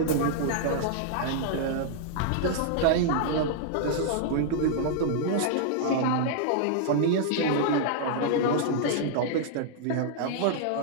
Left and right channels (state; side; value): different; both; correlation -0.01